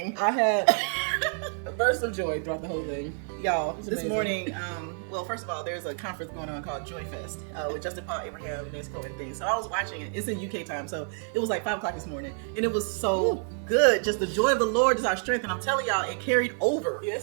I had a burst of joy throughout the whole thing. Y'all, this amazing. morning, well, first of all, there's a conference going on called Joy Fest with Justin Paul, Abraham, Nesco, and things. So I was watching it. It's in UK time, so it was like 5 o'clock this morning. And it was so good. Just the joy of the Lord is our strength. And I'm telling y'all, it carried over.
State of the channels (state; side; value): silent; left; 57 dB below the other